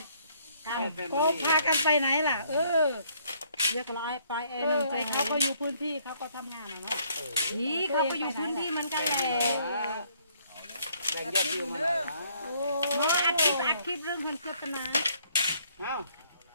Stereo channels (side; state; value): both; inverted; correlation -0.65